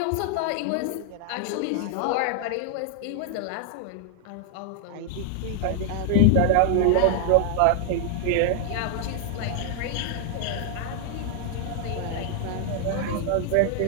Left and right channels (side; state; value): both; different; correlation 0.00